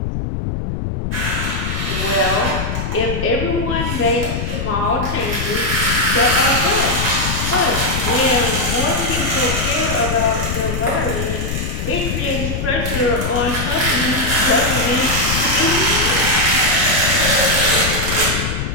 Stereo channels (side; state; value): left; noise; rumble, 3 dB below the sound